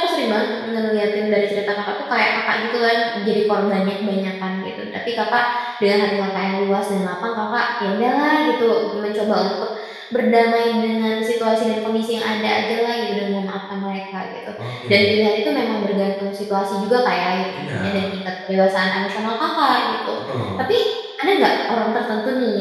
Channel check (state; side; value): identical; both; correlation 1.00